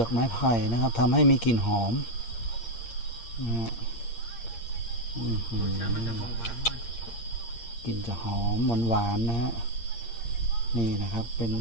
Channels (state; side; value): late; right; 8.7 ms